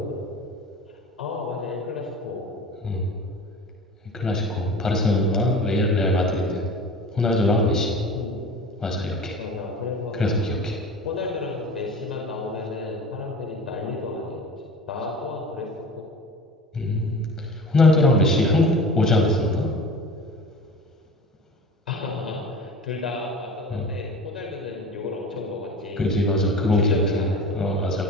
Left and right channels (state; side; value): normal; both; correlation 0.37